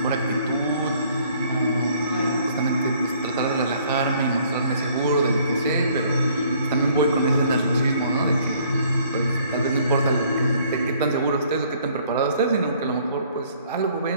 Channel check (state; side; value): inverted; both; correlation -0.60